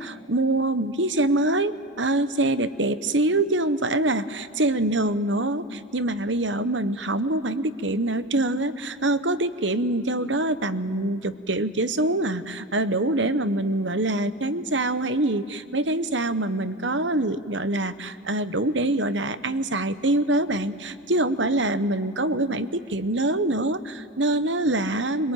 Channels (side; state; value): both; normal; correlation 0.23